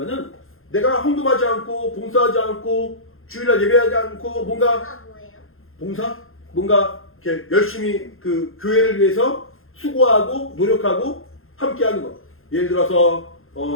내가 헌금하지 않고 봉사하지 않고 주일날 예배하지 않고 뭔가 뭐예요? 봉사? 뭔가 이렇게 열심히 그 교회를 위해서 수고하고 노력하고 함께하는 것. 예를 들어서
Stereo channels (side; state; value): right; late; 0.61 ms